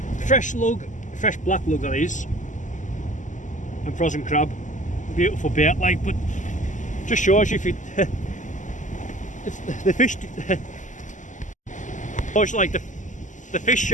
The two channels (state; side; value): late; right; 0.37 ms